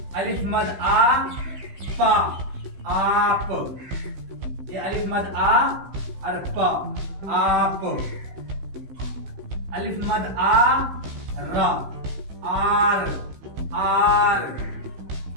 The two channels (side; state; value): left; late; 15 ms